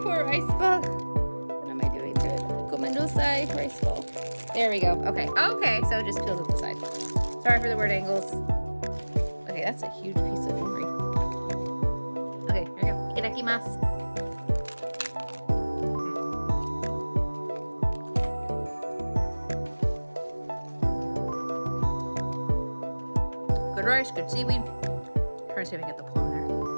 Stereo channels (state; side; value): inverted; both; correlation -1.00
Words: poor rice ball. What am I doing to it? Gomendosai rice ball. There we go. Okay. Okay, so it just peels at the side. Sorry for the weird angles. Okay, that's a huge piece of nori. Okay, here we go. Itadakimasu. Good rice, good seaweed. Try to see if I can get the plum there.